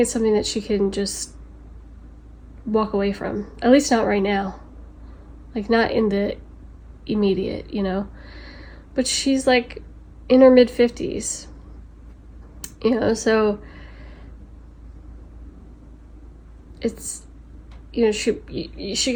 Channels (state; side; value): identical; both; correlation 1.00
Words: it's something that she can just walk away from. At least not right now. Like, not in the immediate, But she's like in her mid-50s. So it's, she